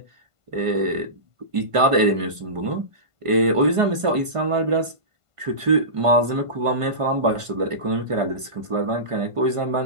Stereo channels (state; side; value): late; left; 1.5 ms